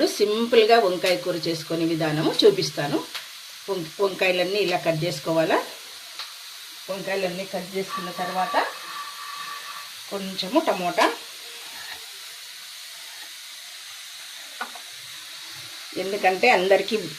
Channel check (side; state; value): both; identical; correlation 1.00